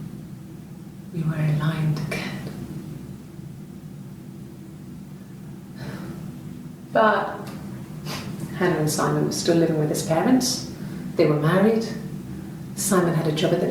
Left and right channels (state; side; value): identical; both; correlation 1.00